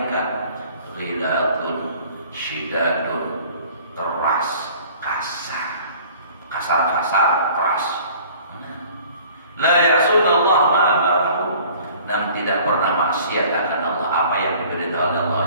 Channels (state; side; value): inverted; both; correlation -0.50